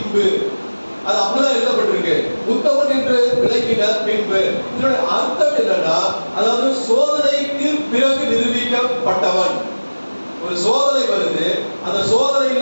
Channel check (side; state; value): both; inverted; correlation -1.00